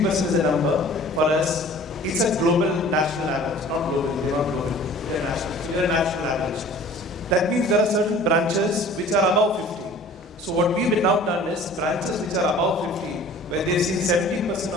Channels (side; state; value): both; normal; correlation 0.47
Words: is the number, for us, it's a global national average. Not global, they're not global, they're national. So they're a national average. That means there are certain branches which are above 50. So what we've now done is branches which are above 50, where they've seen